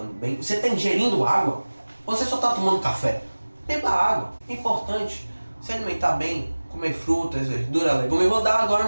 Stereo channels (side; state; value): both; inverted; correlation -1.00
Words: bem? Você está ingerindo água? Ou você só está tomando café? Beba água. É importante se alimentar bem, comer frutas, verduras, legumes. Eu vou dar agora